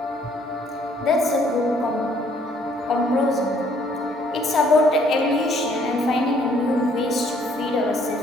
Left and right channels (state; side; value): normal; both; correlation 0.64